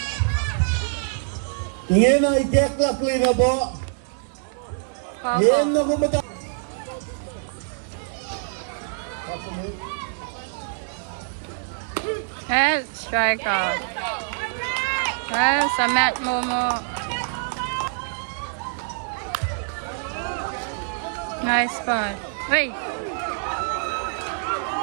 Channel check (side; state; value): left; silent; digital silence